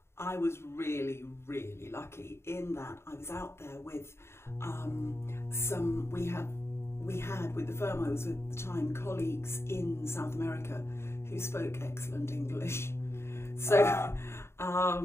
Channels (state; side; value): late; right; 0.12 ms